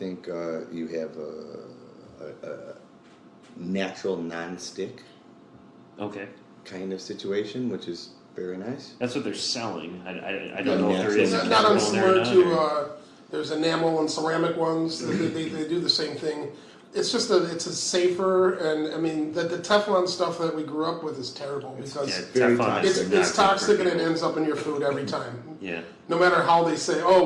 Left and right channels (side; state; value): both; identical; correlation 1.00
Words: you have a natural non-stick Okay. kind of situation, which is very nice. That's what they're selling. I don't know if there is It's a not chemical in there or unsimilar not, to there's enamel and ceramic ones. They do the same thing. It's just it's a safer, and I mean the Teflon stuff that we grew up with is terrible because Yeah, very Teflon is toxic. not it's good for toxic and it people. ends up in your food every time. Yeah. No matter how they say,